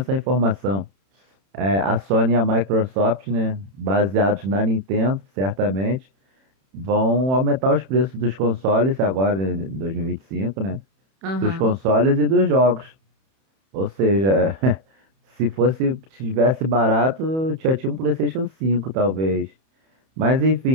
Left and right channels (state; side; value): late; left; 31 ms